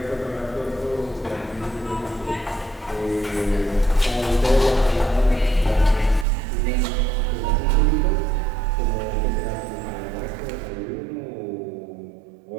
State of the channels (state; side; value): drops out; left; at 6.2 s